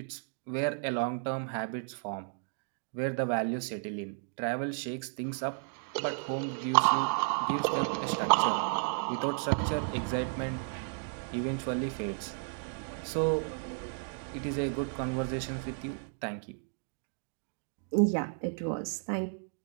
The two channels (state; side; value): silent; left; 56 dB below the other